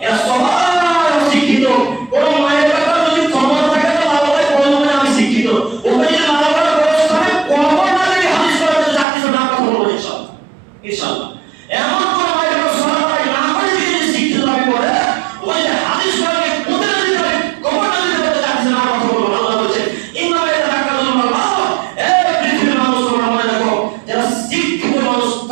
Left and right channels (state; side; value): drops out; left; at 9.1 s